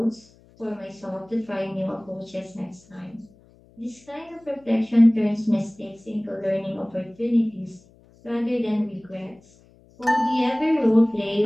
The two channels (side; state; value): left; noise; hum, 28 dB below the sound